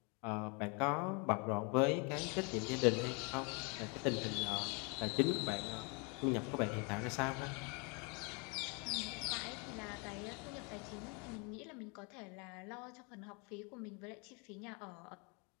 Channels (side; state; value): right; quieter; 32.5 dB